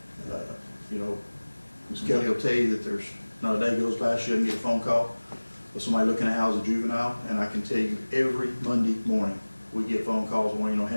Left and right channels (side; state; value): both; inverted; correlation -1.00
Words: you know, Ms. Kelly will tell you that there's not a day goes by she doesn't get a phone call of somebody looking to house a juvenile, and I can tell you every Monday morning, we get phone calls wanting to know how